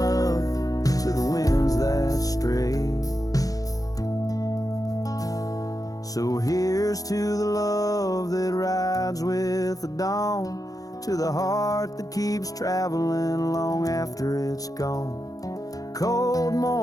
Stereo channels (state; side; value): late; right; 0.17 ms